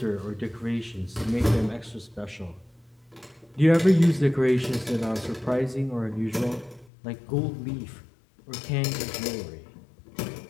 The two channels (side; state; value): right; drops out; at 6.9 s